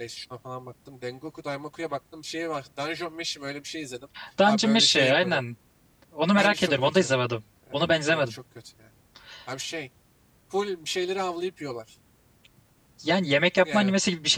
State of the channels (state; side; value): identical; both; correlation 1.00